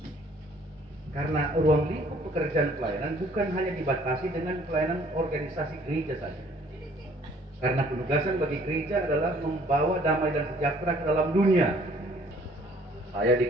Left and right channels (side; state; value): both; normal; correlation 0.58